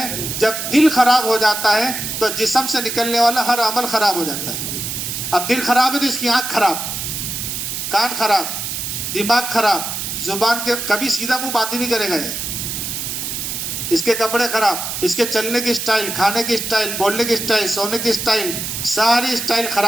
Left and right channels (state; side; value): noise; right; hiss, 4 dB below the sound